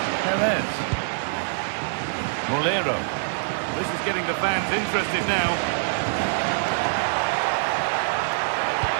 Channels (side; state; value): left; silent; digital silence